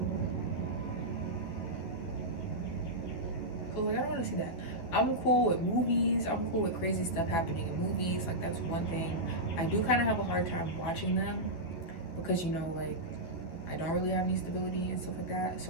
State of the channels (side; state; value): right; late; 12 ms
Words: So like, I don't want to see that. I'm cool with movies. I'm cool with crazy stuff happening in movies. Like, that's one thing. I do kind of have a hard time watching them because, you know, like, I don't really have any stability and stuff like that.